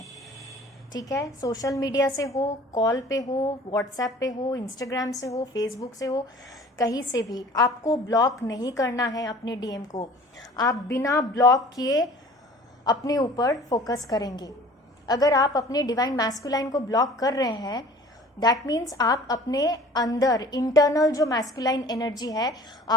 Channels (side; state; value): both; normal; correlation 0.47